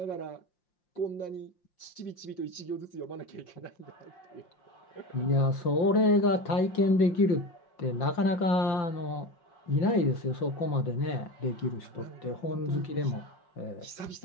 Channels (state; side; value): late; right; 5.8 ms